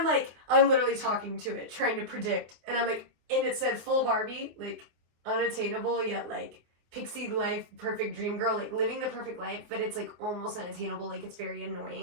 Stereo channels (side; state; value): left; late; 24 ms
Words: like, I'm literally talking to it, trying to predict. And I'm like, and it said full Barbie, like unattainable, yet like pixie life, perfect dream girl, like living the perfect life, but it's like almost unattainable, like it's very